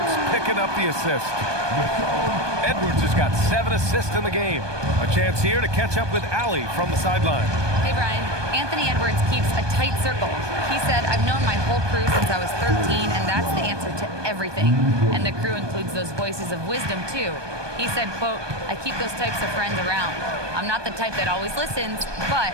picking up the assist. Edwards has got 7 assists in the game. A chance here to catch up with Allie from the sideline. Hey, Brian. Anthony Edwards keeps a tight circle. He said, I've known my whole crew since I was 13, and that's the answer to everything. And the crew includes those voices of wisdom, too. He said, quote, I keep those types of friends around. I'm not the type that always listens, but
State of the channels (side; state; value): left; late; 1.2 ms